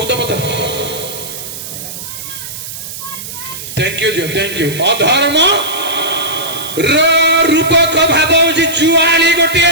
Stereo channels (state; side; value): noise; right; hiss, 10 dB below the sound